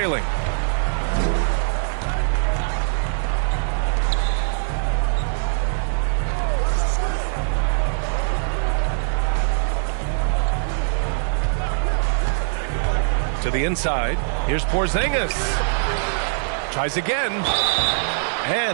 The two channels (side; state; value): left; silent; digital silence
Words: To the inside. Here's Porzingis. Tries again.